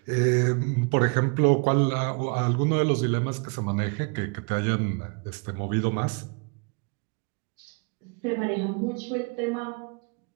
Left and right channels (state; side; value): quieter; left; 34.8 dB